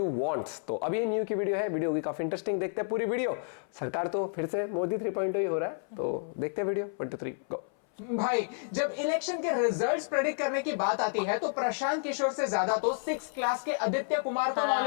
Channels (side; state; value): right; silent; 57 dB below the other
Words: wants. तो अब ये न्यू की वीडियो है, वीडियो की काफी इंटरेस्टिंग, देखते हैं पूरी वीडियो। सरकार तो फिर से मोदी 3.0 ही हो रहा है, तो देखते हैं वीडियो 1 2 3 गो। भाई, जब इलेक्शन के रिजल्ट्स प्रेडिक्ट करने की बात आती है तो प्रशांत किशोर से ज्यादा तो 6th क्लास के आदित्य कुमार को